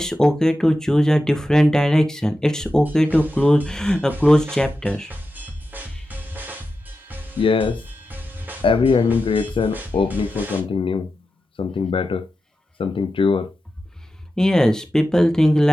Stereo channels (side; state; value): both; normal; correlation 0.91